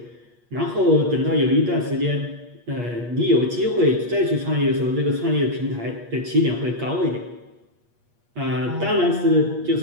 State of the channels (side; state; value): left; late; 8.4 ms